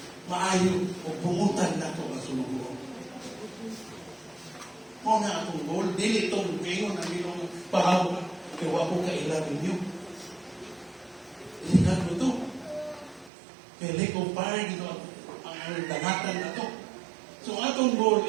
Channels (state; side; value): drops out; left; at 13.3 s